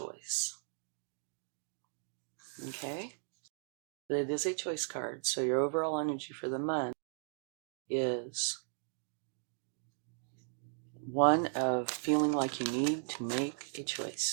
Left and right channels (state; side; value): silent; left; digital silence